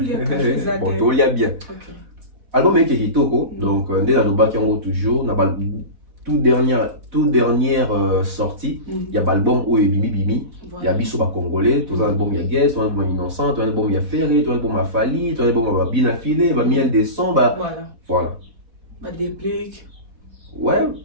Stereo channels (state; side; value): late; left; 4.1 ms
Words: tout y a bien. Album est qui toko donc dès la noba qui en toujours na tout dernière sortie il y a l'album où est bimi il y a biso ba congolais tout un album il y a Guess tout un album innocent tout un album il y a Ferré tout un album a Fally tout un album a bien affilé ba miel des sons voilà ba déplique ouais